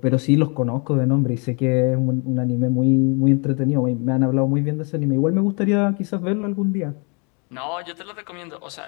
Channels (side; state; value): right; quieter; 34.4 dB